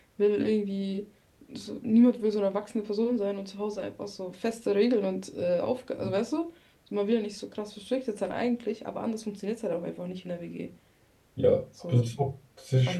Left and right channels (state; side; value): identical; both; correlation 1.00